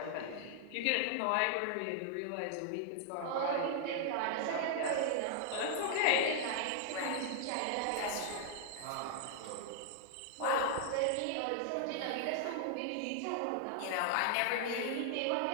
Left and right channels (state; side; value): different; both; correlation -0.01